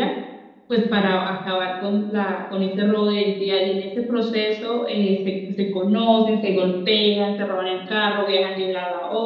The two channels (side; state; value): both; identical; correlation 1.00